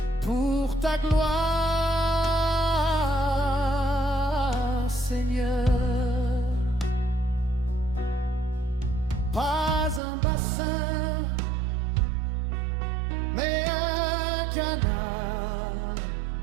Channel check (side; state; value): left; drops out; at 10.0 s